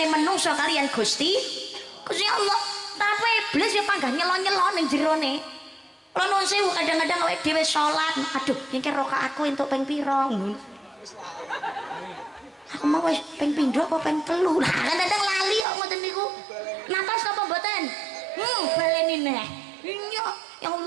manungsa kalian Gusti Allah. Tapi iblis ya panggah nyelon-nyelon ning jerone. Kula nuwun sewu kadang-kadang awake dhewe salat, aduh iki rakaat aku entuk ping pira. Aku mau wis ping pindho apa ping telu. Lah kadang-kadang lali kok ngoten niku. Napas apa mboten? Baleni neh. Iya, ya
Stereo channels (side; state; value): left; drops out; at 15.7 s